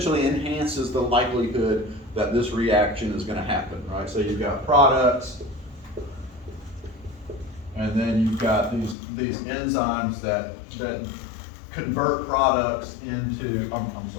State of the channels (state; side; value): drops out; right; at 9.0 s